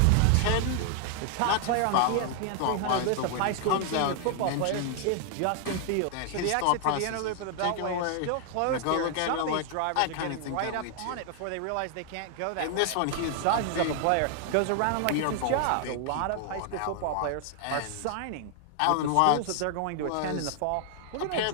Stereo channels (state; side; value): different; both; correlation 0.00